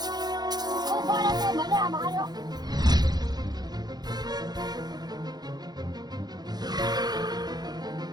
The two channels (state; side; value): late; left; 0.19 ms